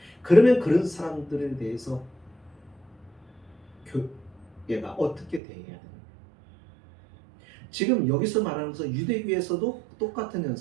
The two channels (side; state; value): left; drops out; at 5.4 s